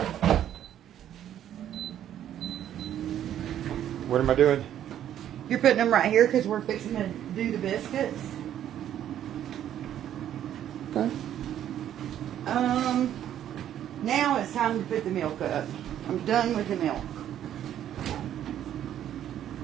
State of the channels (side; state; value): left; quieter; 10.9 dB